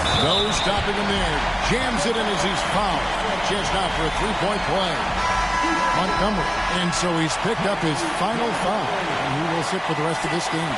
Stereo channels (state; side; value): identical; both; correlation 1.00